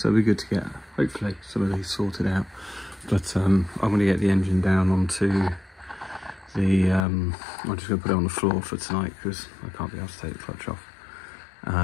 it'll be good to get, hopefully, some of these sorted out. But I'm going to get the engine down onto I'm just going to put it on the floor for tonight because I can't be able to take the clutch off.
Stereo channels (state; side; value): drops out; right; at 7.1 s